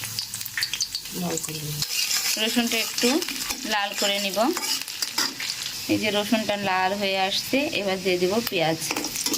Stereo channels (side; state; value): both; identical; correlation 1.00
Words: রসুনটা একটু লাল করে নিব। এই যে রসুনটা লাল হয়ে আসছে, এবার দিয়ে দিব পেঁয়াজ,